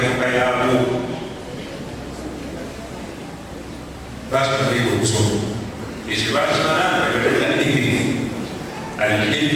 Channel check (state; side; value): identical; both; correlation 1.00